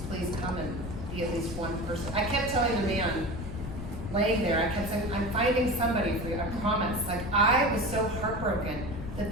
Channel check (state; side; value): noise; left; rumble, 8 dB below the sound